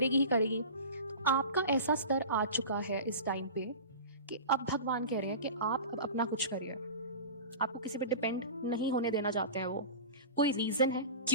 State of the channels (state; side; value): inverted; both; correlation -0.33